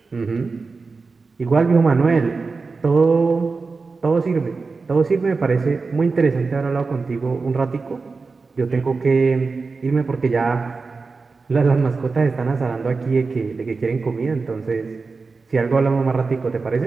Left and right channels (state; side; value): quieter; left; 4.3 dB